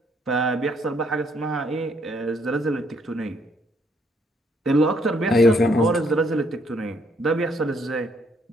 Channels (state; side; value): normal; both; correlation 0.70